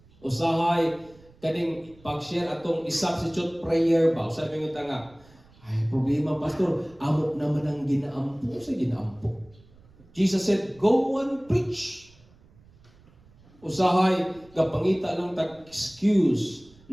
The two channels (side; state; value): right; noise; rumble, 27 dB below the sound